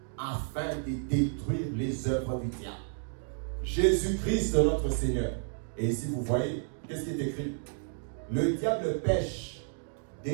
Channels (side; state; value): left; silent; digital silence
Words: afin de détruire les œuvres du diable. Jésus-Christ, notre Seigneur. Et ici, vous voyez, qu'est-ce qui est écrit? Le diable pêche